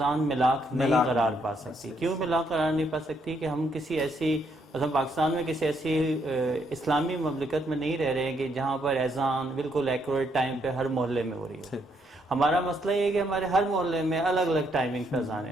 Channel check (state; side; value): normal; both; correlation 0.73